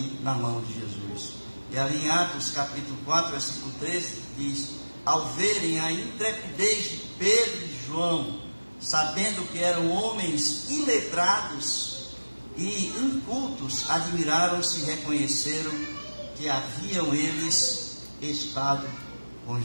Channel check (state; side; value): inverted; both; correlation -1.00